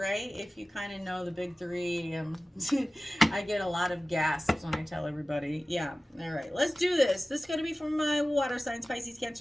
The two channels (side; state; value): both; normal; correlation 0.97